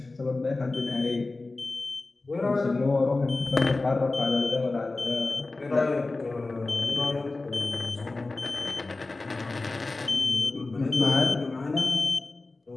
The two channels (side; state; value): right; quieter; 3.3 dB